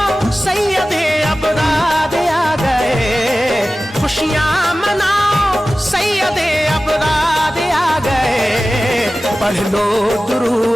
सैयदे अबरार आ गए, खुशियाँ मनाओ सैयदे अबरार आ गए। पढ़ लो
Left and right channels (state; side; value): normal; both; correlation 0.96